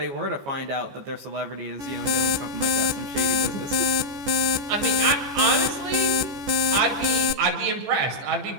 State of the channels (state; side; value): late; left; 14 ms